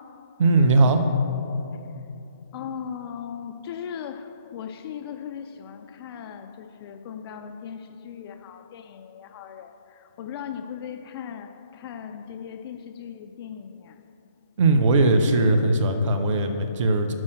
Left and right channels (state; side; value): inverted; both; correlation -0.66